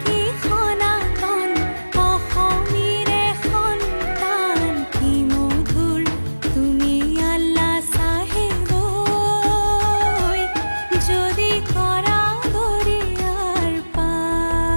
কি সনাতন, অসমীৰে সন্তান কি মধুৰ তুমি আল্লাহ সাহেব ঐ, যদি কৰা দৰিয়াৰ পাৰ।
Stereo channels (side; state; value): both; inverted; correlation -1.00